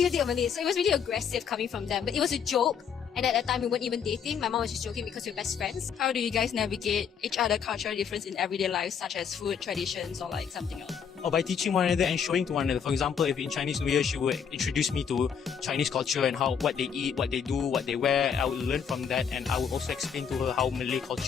you date a Malay? So it was really aggressive coming from them. But it was a joke. And at that time we weren't even dating. My mom was just joking because we were best friends. How do you guys navigate each other cultural difference in everyday life, such as food, traditions, or like something else? Or by teaching one another and showing to one another. For example, if in Chinese New Year she would introduce me to Chinese culture and what they eat, what they do, what they wear, I would learn from that, and I would also explain to her how Malay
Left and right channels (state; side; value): quieter; right; 7.2 dB